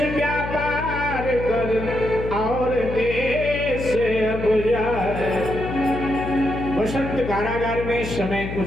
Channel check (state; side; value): noise; left; hum, 7 dB below the sound